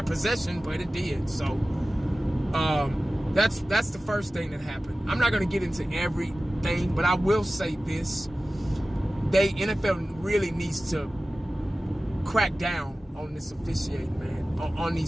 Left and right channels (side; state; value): both; normal; correlation 0.96